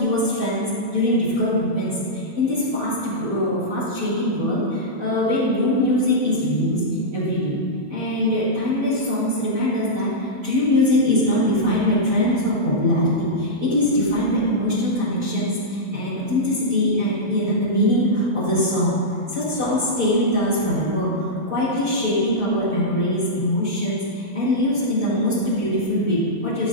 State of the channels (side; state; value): left; late; 16 ms